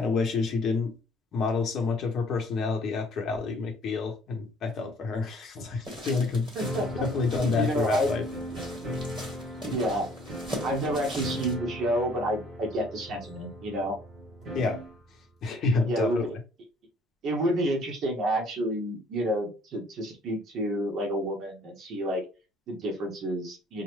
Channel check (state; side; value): normal; both; correlation 0.58